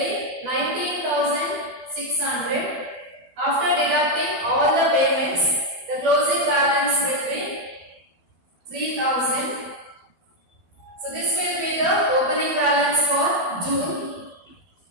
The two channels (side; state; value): left; late; 12 ms